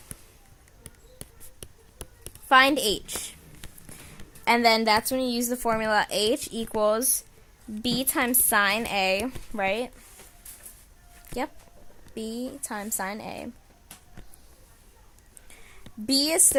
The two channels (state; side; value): identical; both; correlation 1.00